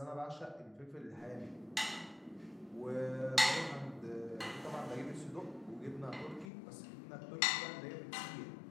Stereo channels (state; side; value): drops out; right; at 6.5 s